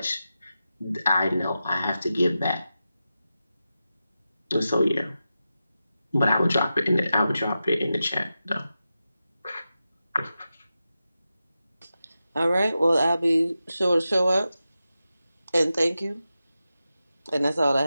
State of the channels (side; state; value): both; inverted; correlation -0.91